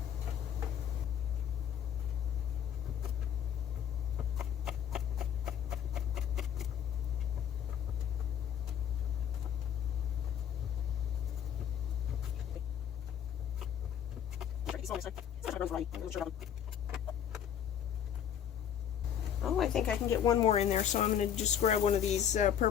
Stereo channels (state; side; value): quieter; right; 9.1 dB